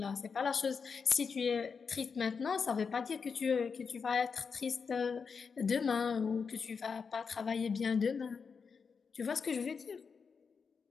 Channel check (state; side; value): quieter; right; 5.6 dB